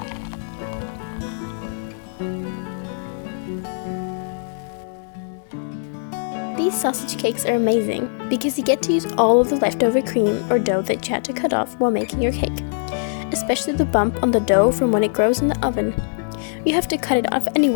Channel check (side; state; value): right; silent; digital silence